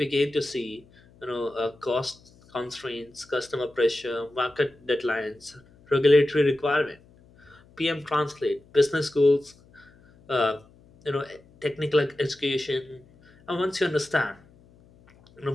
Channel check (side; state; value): left; noise; hum, 28 dB below the sound